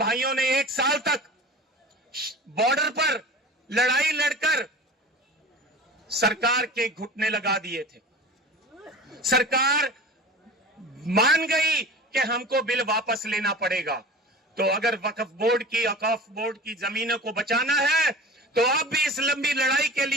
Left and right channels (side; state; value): both; normal; correlation 0.37